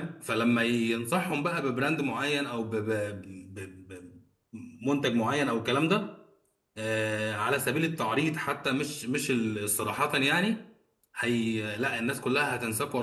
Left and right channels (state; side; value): identical; both; correlation 1.00